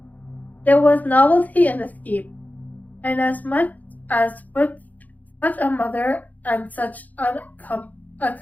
There was novelty in the scheme, and as much as with such a mother and such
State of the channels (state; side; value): late; right; 0.079 ms